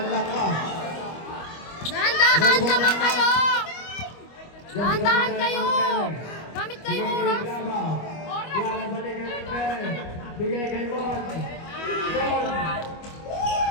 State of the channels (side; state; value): right; late; 25 ms